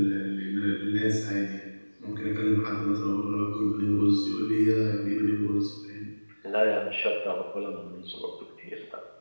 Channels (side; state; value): both; inverted; correlation -1.00